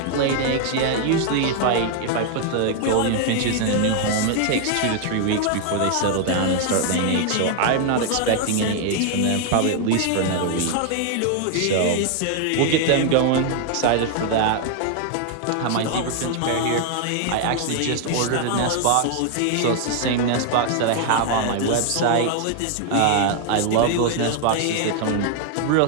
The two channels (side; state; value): both; different; correlation 0.00